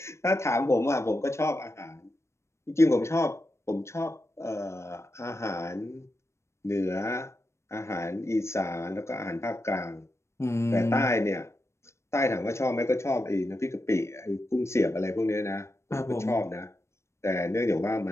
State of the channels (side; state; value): right; late; 0.13 ms